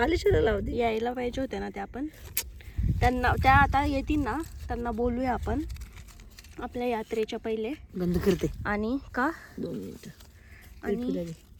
लावते. यायला पाहिजे होत्या ना त्या पण. त्यांना त्या आता येतील ना, त्यांना बोलूया आपण आपल्या यात्रेच्या पहिले. बंद करते आणि का 2 मिनिटं. आणि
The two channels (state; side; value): identical; both; correlation 1.00